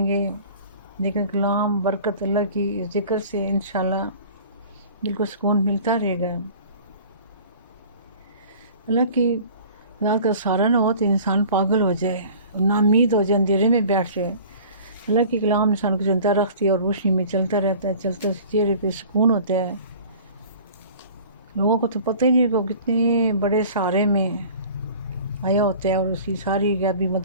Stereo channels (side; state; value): both; inverted; correlation -0.45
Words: گے، لیکن کلام برکت اللہ کی ذکر سے انشاءاللہ دل کو سکون ملتا رہے گا۔ اللہ کی ذات کا سہارا نہ ہو تو انسان پاگل ہو جائے، ناامید ہو جائے، اندھیرے میں بیٹھ جائے۔ اللہ کی کلام انسان کو زندہ رکھتی ہے اور روشنی میں چلتا رہتا ہے، چلتا چہرے پہ سکون ہوتا ہے۔ لوگوں کو تو پتہ ہی نہیں کہ وہ کتنے بڑے سہارے میں آیا ہوتا ہے، اور اس کی ساری غیبی